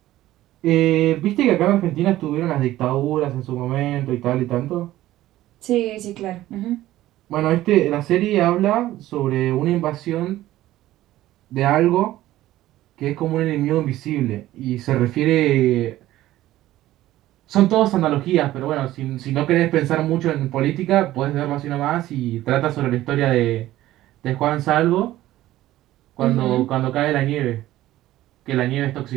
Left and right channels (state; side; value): quieter; left; 15.0 dB